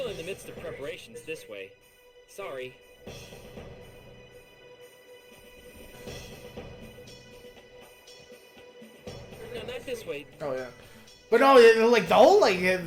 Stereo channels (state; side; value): identical; both; correlation 1.00